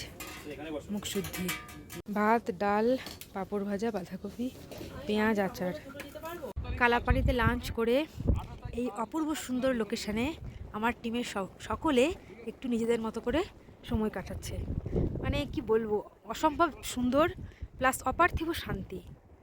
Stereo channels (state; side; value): identical; both; correlation 1.00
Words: মুখশুদ্ধি, ভাত, ডাল, পাঁপড় ভাজা, বাঁধাকপি, পেঁয়াজ, আচার। কালাপানিতে লাঞ্চ করে এই অপূর্ব সুন্দর লোকেশানে আমার টিমের সকলে একটু নিজেদের মতো করে সময় কাটাচ্ছে। মানে কি বলবো, অসম্ভব সুন্দর প্লাস অপার্থিব শান্তি।